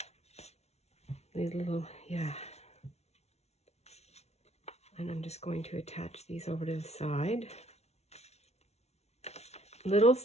and I'm just going to attach these over to the side.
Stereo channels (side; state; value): right; late; 0.31 ms